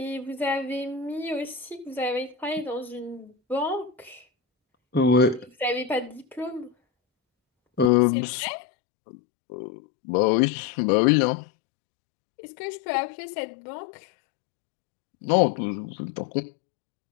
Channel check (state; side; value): drops out; right; at 7.9 s